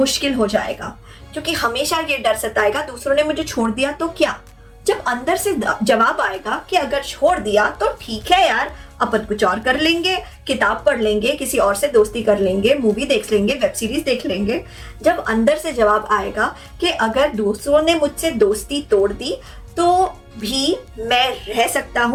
हो जाएगा। क्योंकि हमेशा ये डर सताएगा, दूसरों ने मुझे छोड़ दिया तो क्या। जब अंदर से जवाब आएगा कि अगर छोड़ दिया तो ठीक है यार, अपन कुछ और कर लेंगे, किताब पढ़ लेंगे, किसी और से दोस्ती कर लेंगे, मूवी देख लेंगे, वेब सीरीज देख लेंगे। जब अंदर से जवाब आएगा कि अगर दूसरों ने मुझसे दोस्ती तोड़ दी तो भी मैं रह सकता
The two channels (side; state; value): both; identical; correlation 1.00